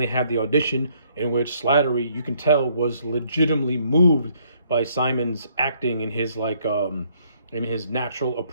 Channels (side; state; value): both; inverted; correlation -0.67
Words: have the audition in which Slattery, you can tell, was legitimately moved by Simon's acting and his in his natural